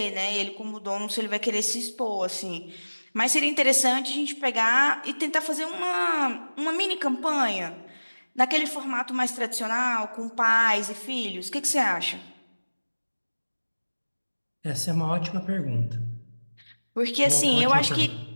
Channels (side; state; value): both; inverted; correlation -1.00